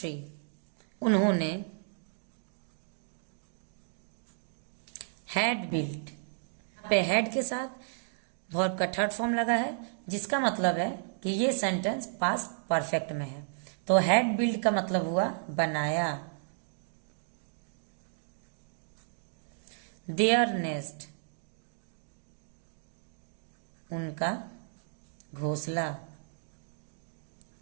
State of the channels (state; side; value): silent; left; digital silence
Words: उन्होंने हैड बिल्ट, पे हैड के साथ वर्ब का थर्ड फॉर्म लगा है, जिसका मतलब है कि ये सेंटेंस पास्ट परफेक्ट में है। तो हैड बिल्ट का मतलब हुआ बनाया। देयर नेस्ट उनका घोंसला।